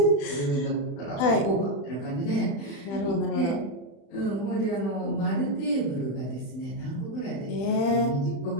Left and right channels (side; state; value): right; late; 35 ms